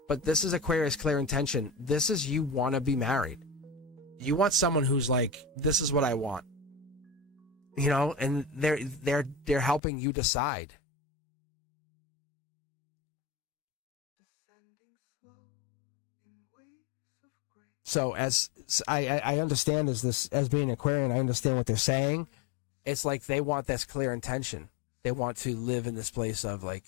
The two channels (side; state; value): right; drops out; at 9.8 s